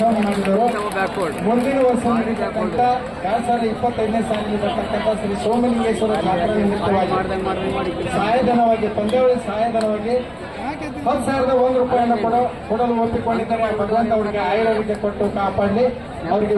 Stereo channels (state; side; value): identical; both; correlation 1.00